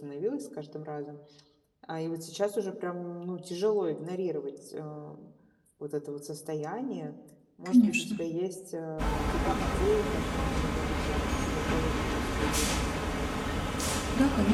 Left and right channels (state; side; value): identical; both; correlation 1.00